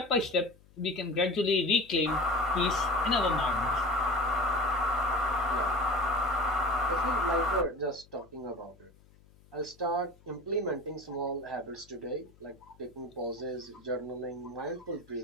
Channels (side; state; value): left; noise; hum, 27 dB below the sound